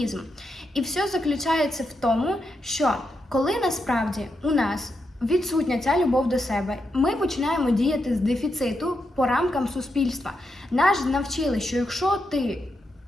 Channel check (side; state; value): both; normal; correlation 0.84